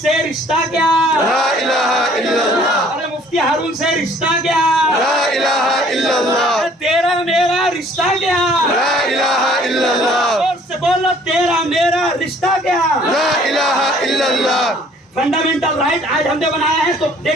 رشتہ کیا، لا الہ الا اللہ، ارے مفتی ہارون سے رشتہ کیا، لا الہ الا اللہ، تیرا میرا رشتہ کیا، لا الہ الا اللہ، اور سے بولو تیرا میرا رشتہ کیا، لا الہ الا اللہ۔ فنڈامنٹل رائٹ آج ہم نے بنایا ہے، تو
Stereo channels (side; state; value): both; normal; correlation 0.57